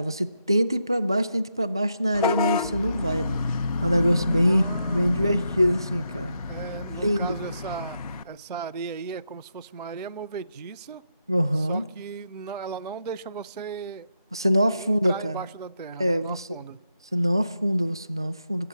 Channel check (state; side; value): inverted; both; correlation -0.83